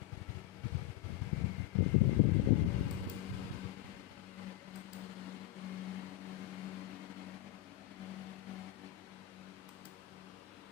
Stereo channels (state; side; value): quieter; right; 15.6 dB